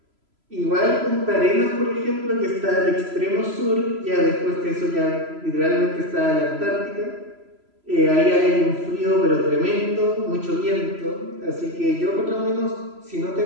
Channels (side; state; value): left; late; 3.0 ms